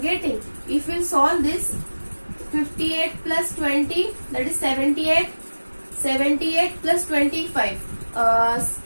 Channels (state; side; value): inverted; both; correlation -1.00